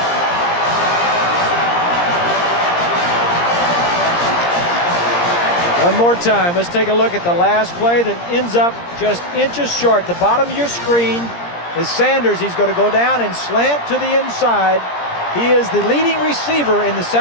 One more time, let's take a look at the last play that ends up just inches short. The bottom of your screen is Sanders. He's going to go down and slant to the inside. He is the leading receiver in the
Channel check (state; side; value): late; right; 17 ms